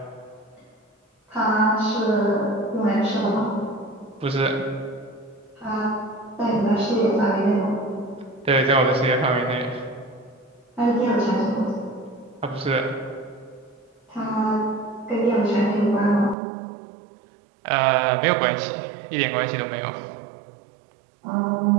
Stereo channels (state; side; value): drops out; left; at 16.4 s